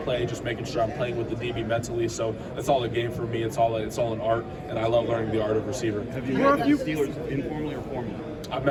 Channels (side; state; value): both; identical; correlation 1.00